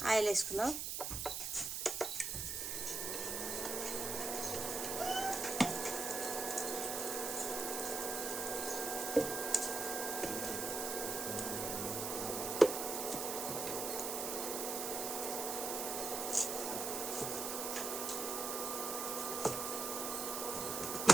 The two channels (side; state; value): right; noise; hiss, 2 dB below the sound